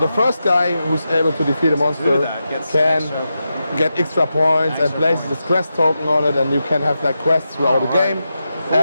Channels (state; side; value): inverted; both; correlation -0.89